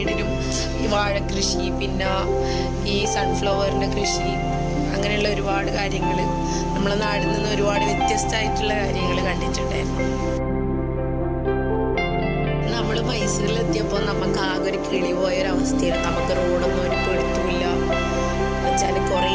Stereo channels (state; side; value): identical; both; correlation 1.00